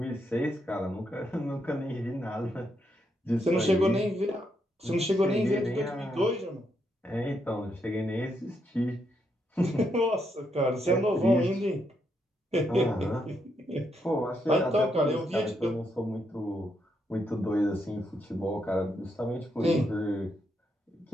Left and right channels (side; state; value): both; normal; correlation 0.78